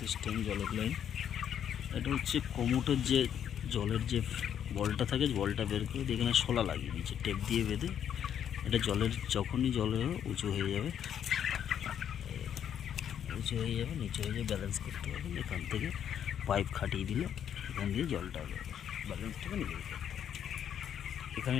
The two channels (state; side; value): quieter; right; 9.2 dB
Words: জলের লাইন। এটা হচ্ছে কোমোটের যে জলের যে বলটা থাকে, বলটা বের করে এখানে শোলা লাগিয়ে দিয়েছে টেপ দিয়ে বেঁধে। এটা জলের যখনই জলে উঁচু হয়ে যাবে, নিচে হয়ে যাবে, ব্যালেন্স করতে হবে। এখান থেকে পাইপ খাটিয়ে দিলে এখান দিয়ে জলটা ব্যালেন্সটাকে নিজে করতে হবে। এখানে